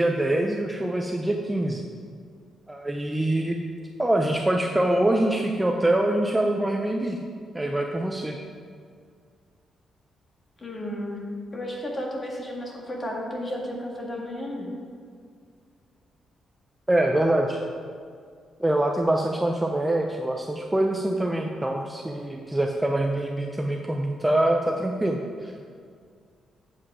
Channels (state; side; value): normal; both; correlation 0.92